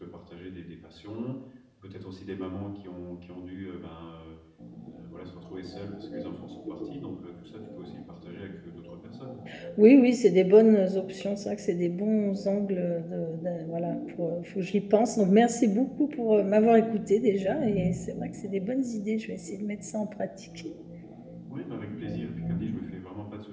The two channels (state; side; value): identical; both; correlation 1.00